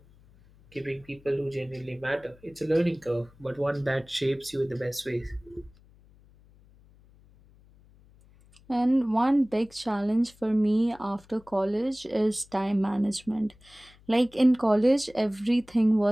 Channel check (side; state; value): left; noise; hum, 27 dB below the sound